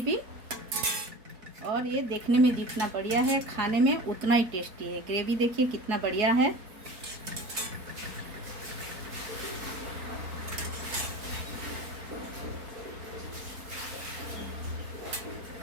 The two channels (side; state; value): left; late; 4.3 ms